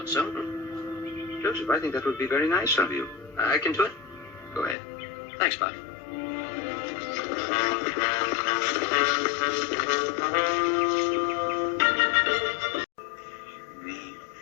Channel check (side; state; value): right; drops out; at 4.8 s